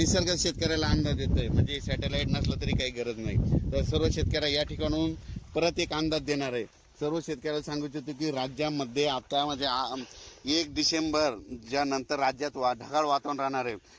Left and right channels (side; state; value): both; identical; correlation 1.00